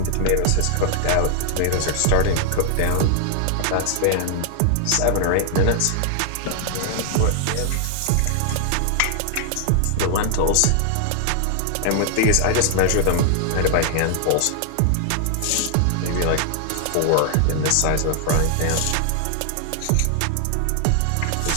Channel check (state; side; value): different; both; correlation 0.00